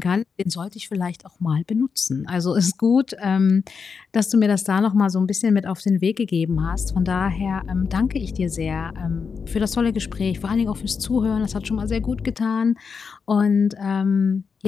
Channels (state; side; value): quieter; right; 5.7 dB